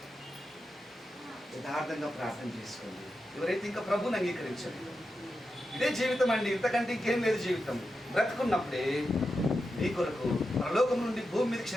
యథార్థంగా ప్రార్థన చేసుకోండి. ఎవరైతే ఇంకా ప్రభుని అంగీకరించలేదు, ఇదే జీవితం అండి, ఇంతకంటే ఇంకేం లేదు జీవితం. బ్రతుకున్నప్పుడే నీ కొరకు పరలోకం నుండి భూమి మీద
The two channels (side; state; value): both; normal; correlation 0.89